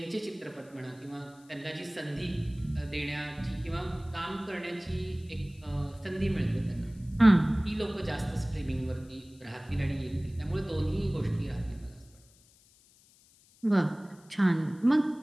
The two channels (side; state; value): left; noise; hiss, 28 dB below the sound